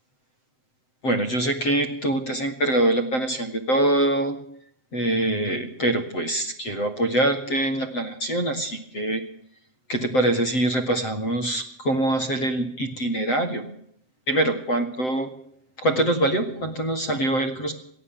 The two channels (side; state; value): right; late; 7.8 ms